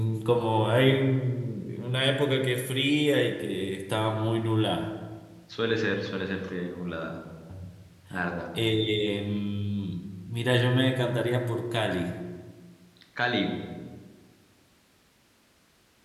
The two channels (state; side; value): identical; both; correlation 1.00